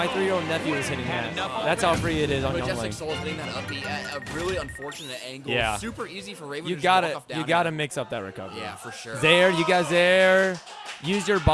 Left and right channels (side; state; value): both; identical; correlation 1.00